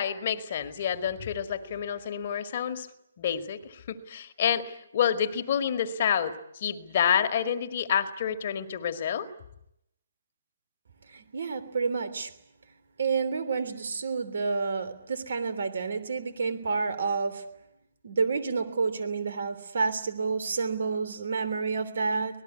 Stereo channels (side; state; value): both; inverted; correlation -0.69